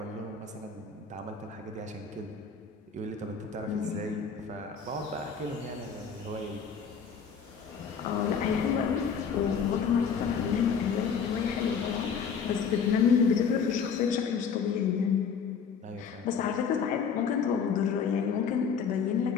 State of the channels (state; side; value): quieter; right; 6.4 dB